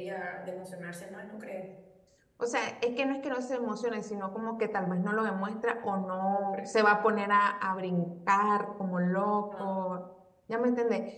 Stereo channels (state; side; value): identical; both; correlation 1.00